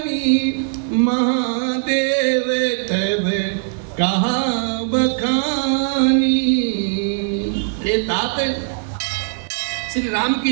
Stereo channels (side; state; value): left; silent; digital silence